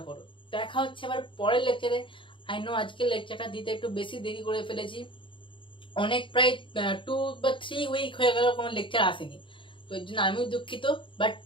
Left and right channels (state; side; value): late; right; 0.24 ms